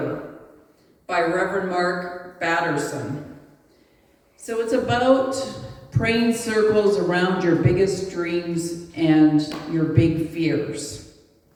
by Reverend Mark Batterson. So it's about praying circles around your biggest dreams and your big fears.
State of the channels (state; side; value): identical; both; correlation 1.00